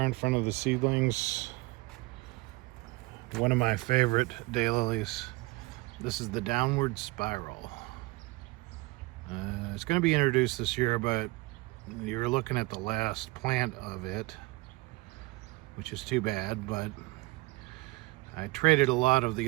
front of the seedlings. One of my favorite daylilies. This is the Downward Spiral. It's going to be introduced this year, but you're looking at the last plant of it, which is too bad, but I traded a lot of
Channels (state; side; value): quieter; left; 22.9 dB